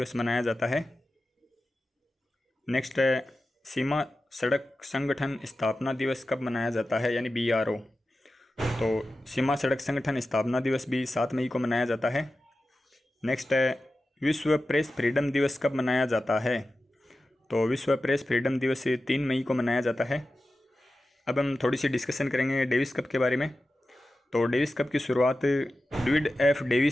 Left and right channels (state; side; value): normal; both; correlation 0.93